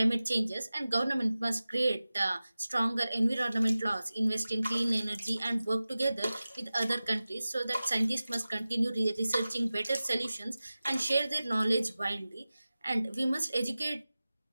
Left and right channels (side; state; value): both; inverted; correlation -0.96